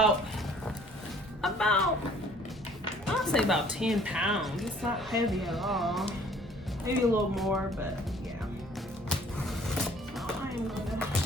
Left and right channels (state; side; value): normal; both; correlation 0.56